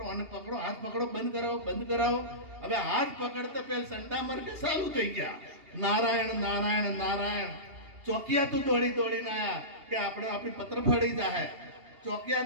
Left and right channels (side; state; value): left; late; 2.8 ms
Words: અને પકડો, હાથ પકડો, બંધ કરાવો બંધ કરાવો. હવે હાથ પકડતા પેલા ચંડામરક ચાલુ થઈ ગયા નારાયણ નારાયણ નારાયણ. ચોકિયા તો દોડીને આવ્યા કે આપણે આપણી પત્ર ફળી જાય.